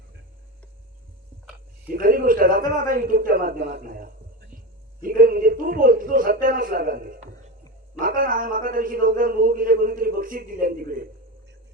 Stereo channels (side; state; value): both; normal; correlation 0.21